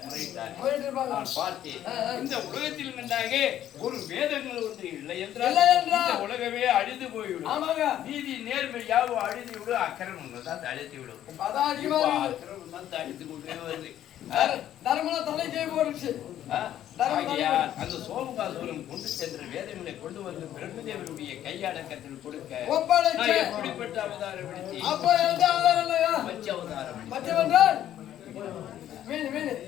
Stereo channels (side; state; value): right; quieter; 11.6 dB